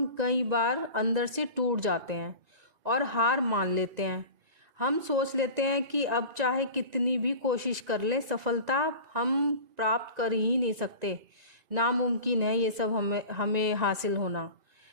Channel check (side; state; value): left; late; 1.9 ms